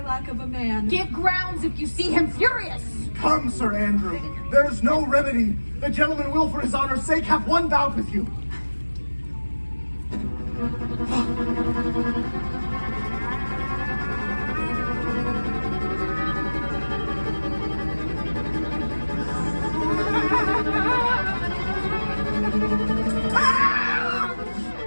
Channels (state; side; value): inverted; both; correlation -1.00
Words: lack of a man. Give grounds if you see him furious. Come, Sir Andrew. There's no remedy. The gentleman will, for his honor's sake, have one bout with you.